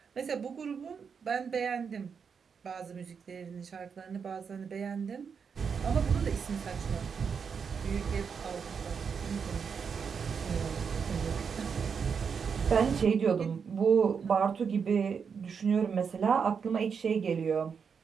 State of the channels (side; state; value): left; quieter; 6.3 dB